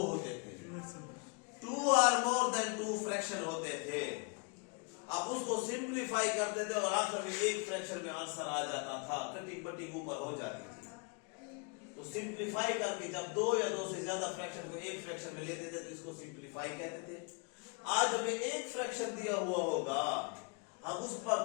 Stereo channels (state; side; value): quieter; right; 35.3 dB